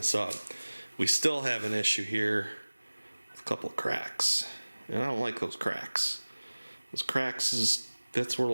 up. We still have an issue here with a couple of cracks, and I don't like those cracks. Those cracks that's where the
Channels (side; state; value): both; inverted; correlation -1.00